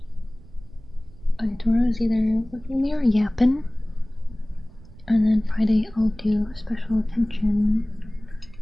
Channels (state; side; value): noise; right; rumble, 21 dB below the sound